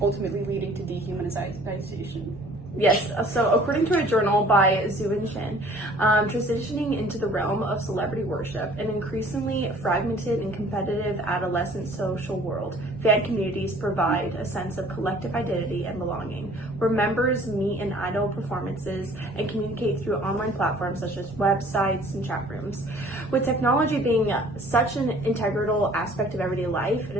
ultimately leading to dehumanization? Yes, so according to a journal by Zhu Shin, transitioning into the realm of celebrity worship, an increasingly fragmented and competitive adolescent social world, fan communities provide a sense of collective identity and belonging, where members meet in idol performances and communicate through online platforms such as websites and chat rooms. With technology being such an integral aspect of everyday life, it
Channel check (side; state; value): both; normal; correlation 0.53